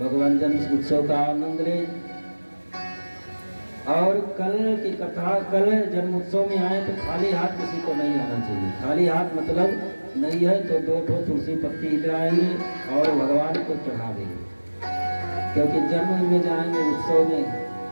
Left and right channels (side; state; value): both; inverted; correlation -1.00